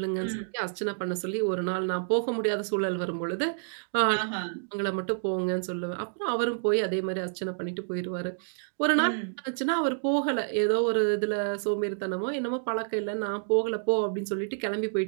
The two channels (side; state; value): left; silent; digital silence